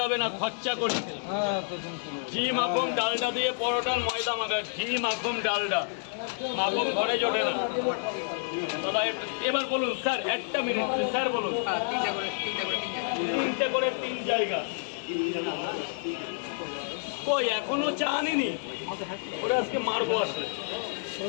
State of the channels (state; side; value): silent; right; digital silence